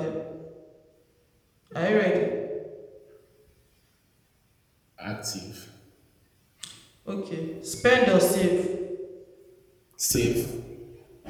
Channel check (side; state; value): both; identical; correlation 1.00